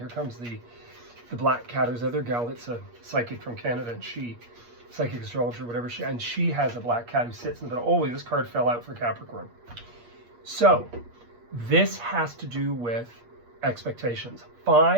comes the black cat. There's another gal that's a psychic from Canada, and psychic astrologer, whatever, and she has a black cat who sits in the middle. Oh, this card fell out for Capricorn. So this has to do with expectations.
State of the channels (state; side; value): late; left; 8.5 ms